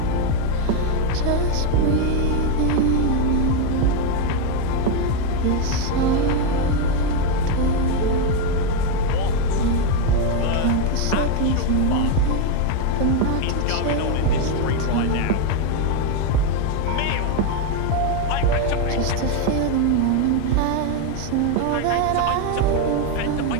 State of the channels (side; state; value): both; different; correlation 0.02